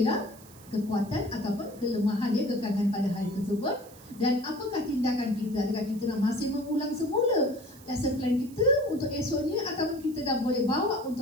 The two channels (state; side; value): noise; right; hiss, 22 dB below the sound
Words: kekuatan ataupun kelemahan dia, kekangan pada hari tersebut. Dan apakah tindakan kita? Adakah kita nak masih mengulang semula lesson plan kita untuk esoknya ataupun kita dah boleh bawa